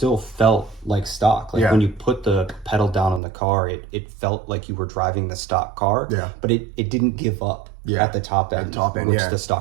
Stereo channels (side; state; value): left; drops out; at 3.2 s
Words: felt like stock. Like when you put the pedal down on the car, it felt like you were driving the stock car, but it didn't give up at the top end, which the